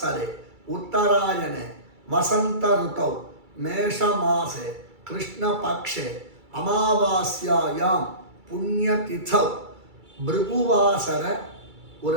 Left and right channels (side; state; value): left; late; 2.3 ms